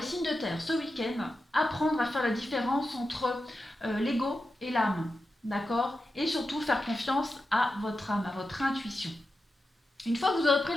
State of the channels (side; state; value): both; normal; correlation 0.90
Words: signes de terre, ce week-end, apprendre à faire la différence entre l'ego et l'âme, d'accord? Et surtout faire confiance à votre âme, à votre intuition. Une fois que vous aurez pris